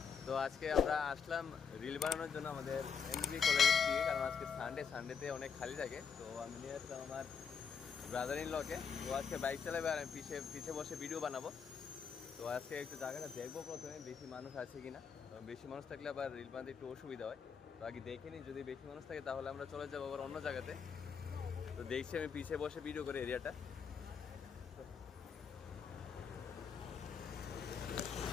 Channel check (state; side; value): quieter; right; 6.5 dB